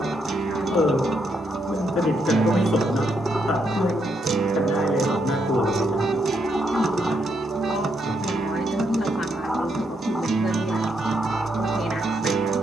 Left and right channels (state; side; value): normal; both; correlation 0.78